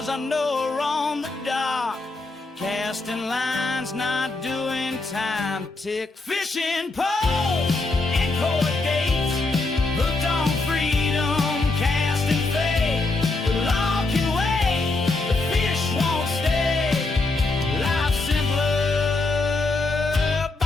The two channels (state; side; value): quieter; right; 3.3 dB